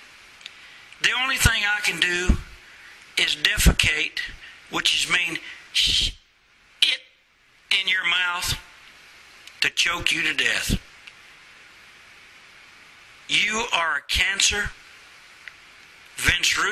the only thing I can do is defecate, which is mean it in your mouth to choke you to death. You are a cancer. Vince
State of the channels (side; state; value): both; identical; correlation 1.00